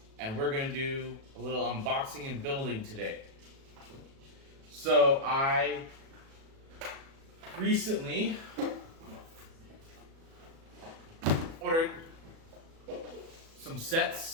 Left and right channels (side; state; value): left; late; 37 ms